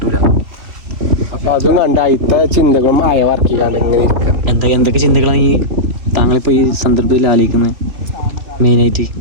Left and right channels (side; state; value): left; late; 3.2 ms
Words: അപ്പൊ അതും കണ്ട അയിത്തെ ചിന്തകളും ആയ വർക്ക് ചെയ്യാണ്ട് ഇങ്ങനെ ഇരിക്കാം. എന്തൊക്കെ ചിന്തകളാണ് ഈ താങ്കളിപ്പോ ഈ സന്ദർഭത്തിൽ ആലോചിക്കുന്നത്? മെയിനായിട്ട്